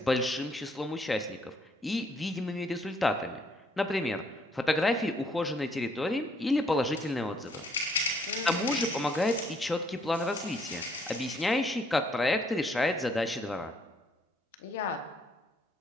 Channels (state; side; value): normal; both; correlation 0.67